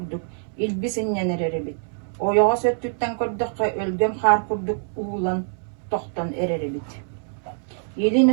илбісіннен әрері бит. Ойоға сөттүттен көрдіққа өлгем қар көрдік уылан тоқтан әрері бит.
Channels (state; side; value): silent; left; 62 dB below the other